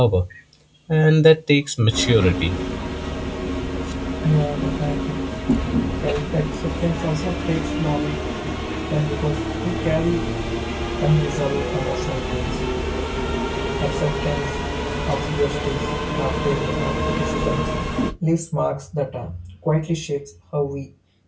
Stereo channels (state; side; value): identical; both; correlation 1.00